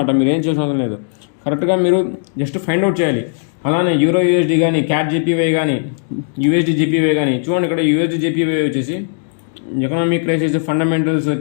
మీరు ఏం చేసిన అవసరం లేదు. కరెక్ట్గా మీరు జస్ట్ ఫైండ్ అవుట్ చేయాలి. అలానే యూరో యూఎస్డి కానీ, క్యాట్ జీపీవై కానీ, యూఎస్డి జీపీవై కానీ చూడండి. ఇక్కడ యూఎస్డి జీపీవై వచ్చేసి ఎకనామిక్ క్రైసిస్, ఫండమెంటల్స్,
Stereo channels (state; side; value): silent; right; digital silence